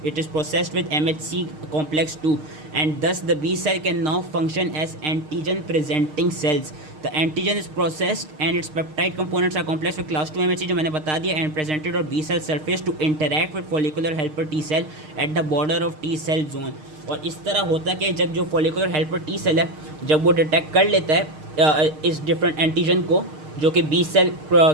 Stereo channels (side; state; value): left; late; 6.5 ms